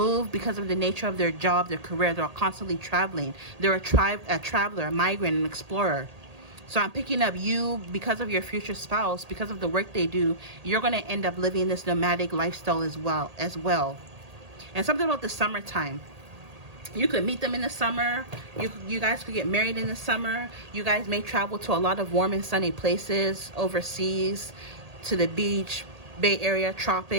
because of the nature of their job, their career. They're constantly traveling. They're a traveler, a migrant, an explorer. So I'm picking up you, because of your future spouse, because of the work they do, you're going to end up living this nomadic lifestyle as well. And something about the summertime. You could meet them in the summer. You guys could get married in the summer. You guys may travel to a lot of warm and sunny places overseas, to the beach, Bay Area,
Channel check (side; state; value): left; late; 1.8 ms